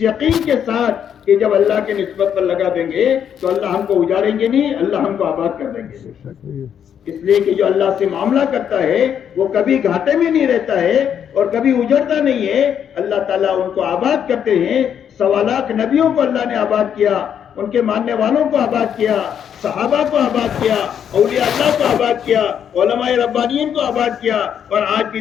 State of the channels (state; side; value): quieter; right; 8.6 dB